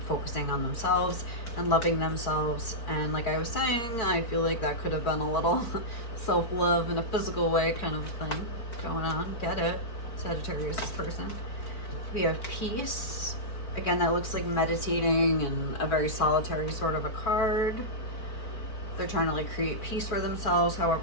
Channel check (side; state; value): right; late; 4.5 ms